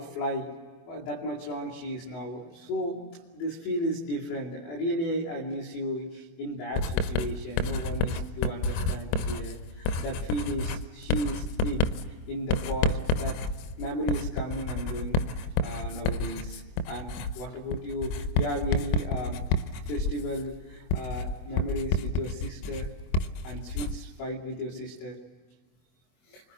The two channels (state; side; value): late; right; 25 ms